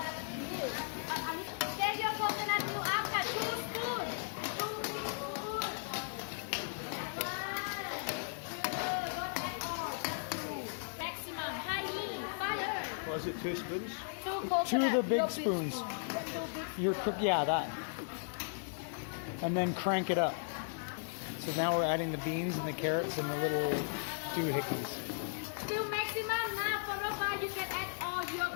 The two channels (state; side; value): silent; right; digital silence